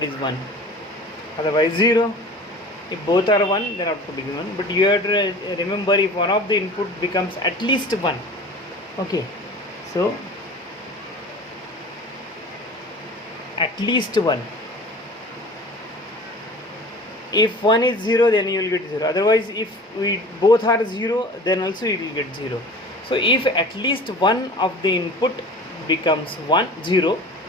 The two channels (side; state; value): both; normal; correlation 0.40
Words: is 1, otherwise 0. If both are 1, then output is 1. But you have to remember, if one of the input becomes at least 1. Okay, so at least 1. If 1 is 0, then you will get 0. Otherwise, if we both are 0, then also you will get 0. So if at least one of the input becomes 0,